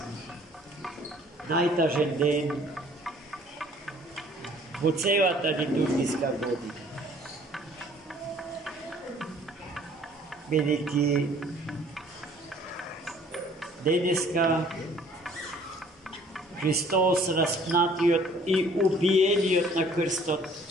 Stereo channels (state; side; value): normal; both; correlation 0.56